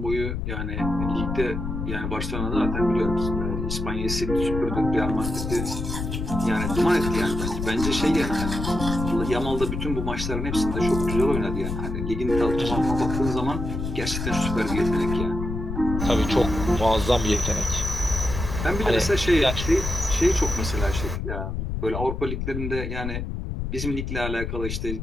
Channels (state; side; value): noise; left; rumble, 4 dB below the sound